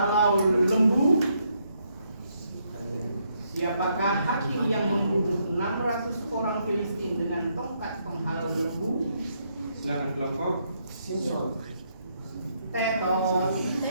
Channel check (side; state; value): both; inverted; correlation -0.75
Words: lembu? Siapakah hakim yang membunuh 600 orang Filistin dengan tongkat penghalau lembu? Silakan kelompok. Tetot.